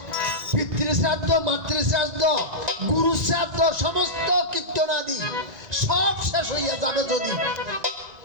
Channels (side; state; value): left; late; 1.9 ms